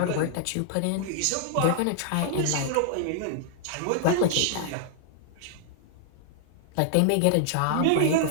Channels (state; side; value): different; both; correlation -0.01